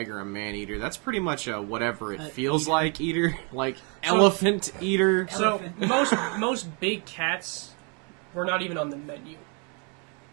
a man-eater. That's pretty much a whatever it feels eater. like eater. Like, elephant eater. So most big cats were not even on the menu.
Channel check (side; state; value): left; quieter; 35.3 dB